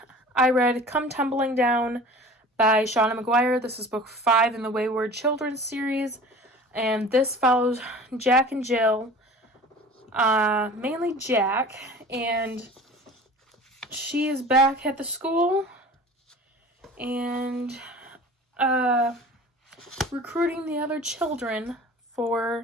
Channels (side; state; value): both; normal; correlation 0.41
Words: I read Come Tumbling Down by Shauna McGuire. This is book 5 in the Wayward Children series. And this follows Jack and Jill. Mainly Jack. And she is back at the school. And recruiting the other children